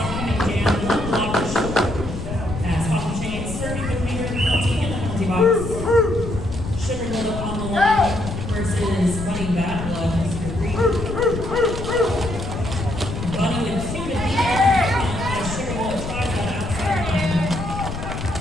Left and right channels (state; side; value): noise; left; rumble, 6 dB below the sound